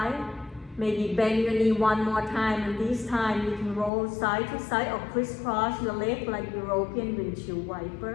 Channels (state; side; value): drops out; right; at 3.9 s